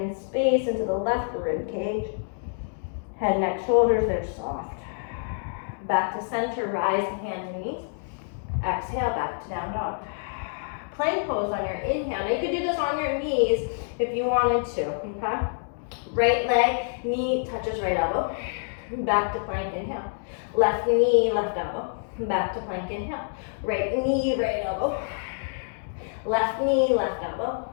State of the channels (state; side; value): silent; right; digital silence